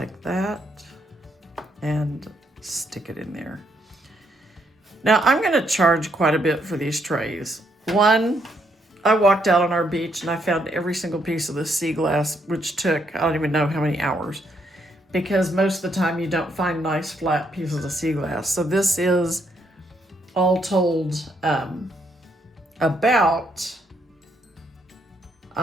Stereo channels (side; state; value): both; normal; correlation 0.74